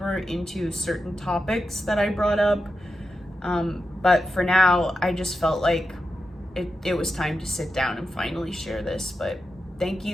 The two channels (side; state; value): both; normal; correlation 0.89